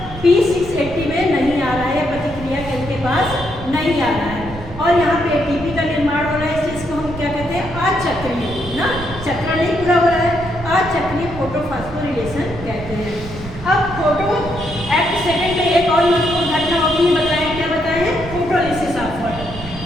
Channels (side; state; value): right; noise; rumble, 12 dB below the sound